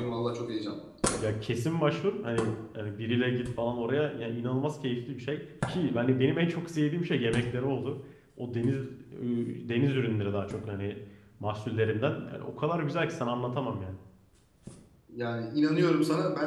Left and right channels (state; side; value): identical; both; correlation 1.00